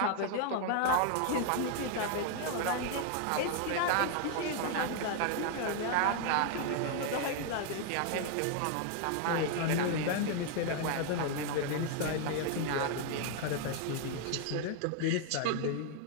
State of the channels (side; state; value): both; different; correlation 0.00